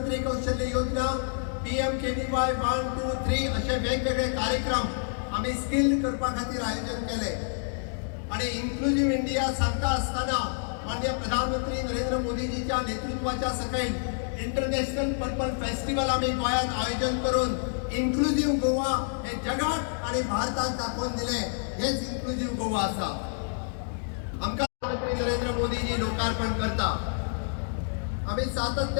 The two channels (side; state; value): right; silent; digital silence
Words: कौशल्य योजना, PMKVY 1, 2, 3 असे वेगवेगळे कार्यक्रम आम्ही स्किल्ड करपा खातीर आयोजन केले. आणि इन्क्लुझिव्ह इंडिया सांगता असताना माननीय प्रधानमंत्री नरेंद्र मोदीजीच्या नेतृत्वाच्या सकयल इंटरनॅशनल पर्पल फेस्टिवल आम्ही गोंयांत आयोजन करून इन्क्लुझिव्ह गोवा हे जगात आणि भारताक दाखोवन दिले. हेच इन्क्लुझिव्ह गोवा आसा. आमकां प्रधानमंत्री नरेंद्र मोदीजी लोकार्पण करता. आम्ही